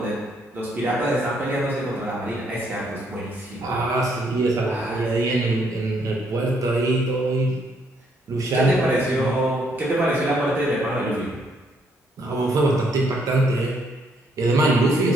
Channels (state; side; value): normal; both; correlation 0.71